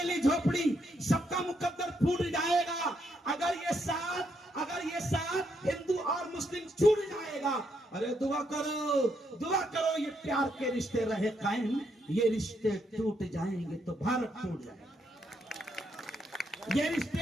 झोपड़ी सबका मुकद्दर फूट जाएगा अगर ये साथ हिंदू और मुस्लिम छूट जाएगा। अरे दुआ करो ये प्यार के रिश्ते रहे कायम, ये रिश्ते टूट जाएंगे तो भारत टूट जाएगा। ये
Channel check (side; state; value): both; normal; correlation 0.77